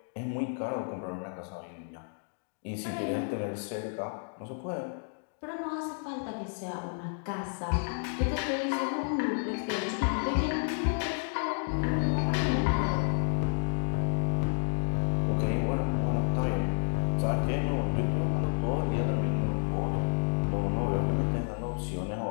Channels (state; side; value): silent; right; digital silence